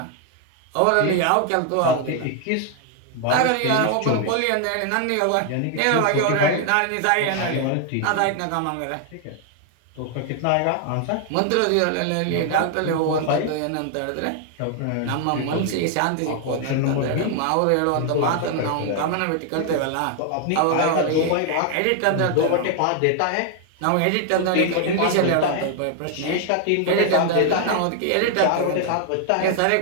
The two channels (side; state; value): both; different; correlation 0.00